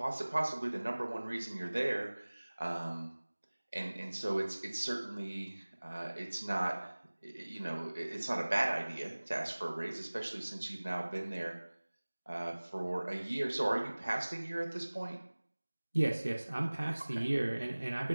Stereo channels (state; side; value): inverted; both; correlation -1.00